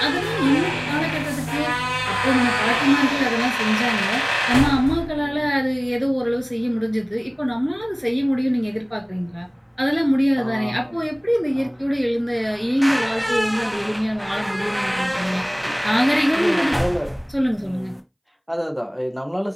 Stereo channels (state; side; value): identical; both; correlation 1.00